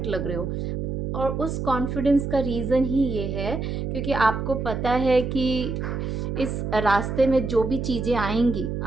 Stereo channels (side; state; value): right; noise; hum, 3 dB below the sound